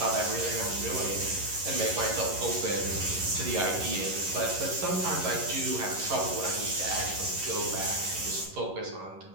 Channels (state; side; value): late; left; 11 ms